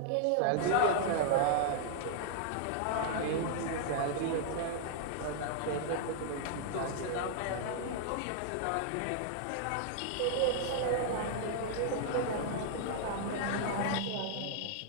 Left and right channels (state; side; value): different; both; correlation -0.01